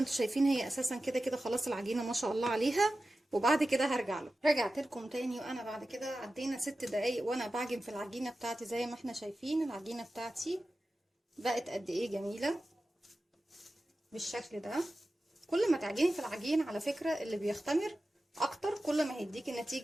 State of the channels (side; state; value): both; normal; correlation 0.94